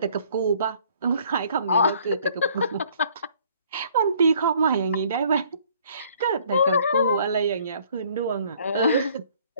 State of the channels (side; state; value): both; inverted; correlation -0.59